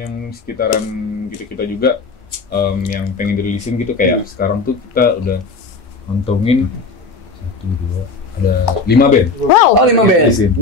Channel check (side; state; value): right; quieter; 4.1 dB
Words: sekitaran kita juga yang pengen dirilisin gitu kayak sekarang tuh kita udah ngantongin 1, 2, ada 5 band. Wow. Oh 5 band.